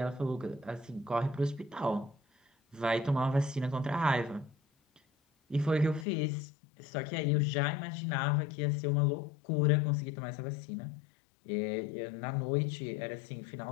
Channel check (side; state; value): right; drops out; at 6.1 s